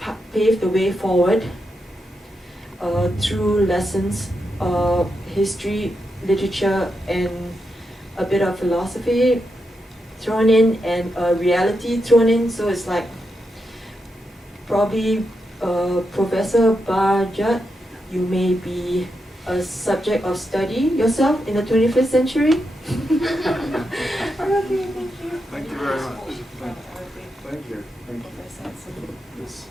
pave the way forward through lessons, history, literature, and a bit of philosophy thrown in, and reality thrown in. So it's like probably Professor Bajat, you may be a subject of study yourself in the 21st century. Okay, thank you. Thank you very much. Thank you. Thank you. Yes.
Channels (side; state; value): both; normal; correlation 0.85